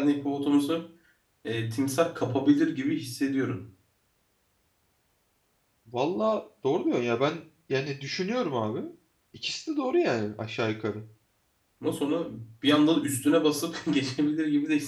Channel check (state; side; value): identical; both; correlation 1.00